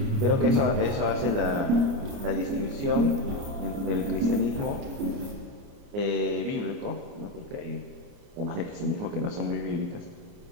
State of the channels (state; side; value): late; left; 29 ms